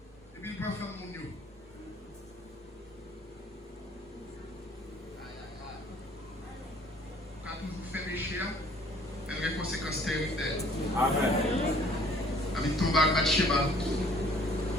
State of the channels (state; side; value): normal; both; correlation 0.57